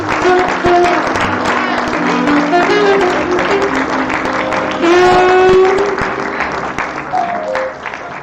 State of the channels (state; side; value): identical; both; correlation 1.00